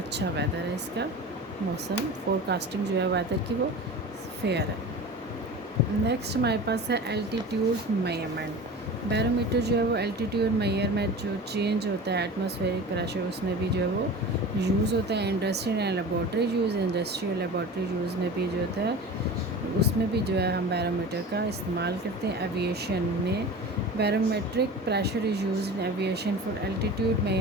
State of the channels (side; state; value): both; normal; correlation 0.35